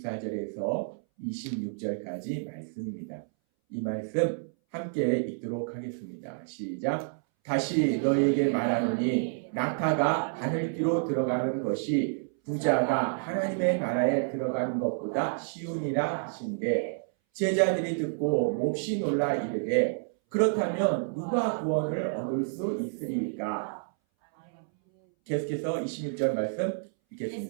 26절까지 말씀입니다. 이 말씀 함께 읽도록 하겠습니다. 시작. 다시 너희에게 말하노니 낙타가 바늘귀로 들어가는 것이 부자가 하나님의 나라에 들어가는 것보다 쉬우니라 하신대 제자들이 듣고 몹시 놀라 이르되 그렇다면 누가 구원을 얻을 수 있으리까? 계속해서 26절 말씀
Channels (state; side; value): silent; left; 58 dB below the other